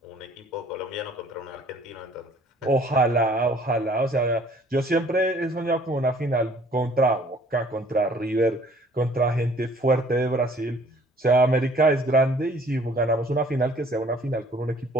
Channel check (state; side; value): normal; both; correlation 0.56